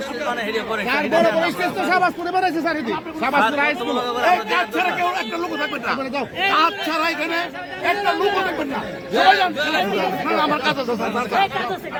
কাজ ছাড়া কেউ একটা লোক থাকবেন না, কাজ ছাড়া এখানে একটা লোক থাকবেন না। সবাই যান, আমার কাছে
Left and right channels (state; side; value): identical; both; correlation 1.00